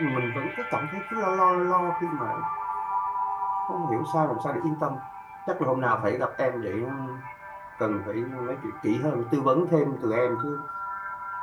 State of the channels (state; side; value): identical; both; correlation 1.00